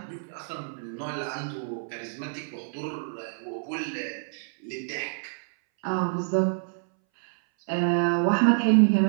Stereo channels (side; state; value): left; silent; 60 dB below the other